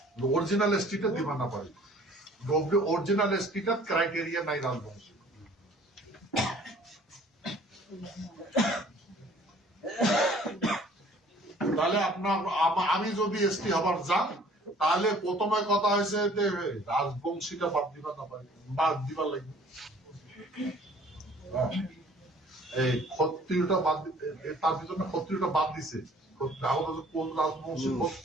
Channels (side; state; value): both; normal; correlation 0.54